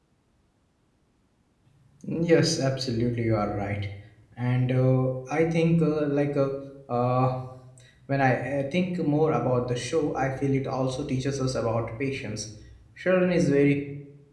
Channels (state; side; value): identical; both; correlation 1.00